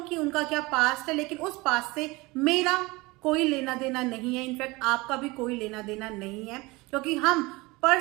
उनका क्या पास्ट है, लेकिन उस पास्ट से मेरा कोई लेना देना नहीं है। इनफैक्ट आपका भी कोई लेना देना नहीं है, क्योंकि हम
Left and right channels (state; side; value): quieter; left; 23.1 dB